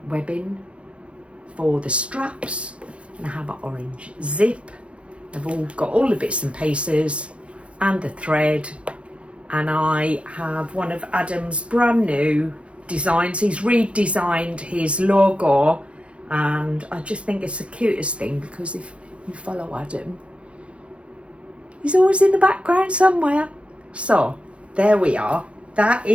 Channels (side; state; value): left; late; 0.060 ms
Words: webbing for the straps, and I have an orange zip. I've all got all the bits and pieces and the thread, and I have one of Adam's brand new designs. He's redesigned his logo, and I just think it's the cutest thing, because if you follow Adam, he's always in the background somewhere. So there we are. That